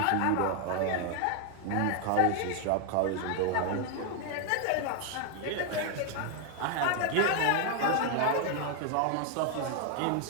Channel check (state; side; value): different; both; correlation 0.01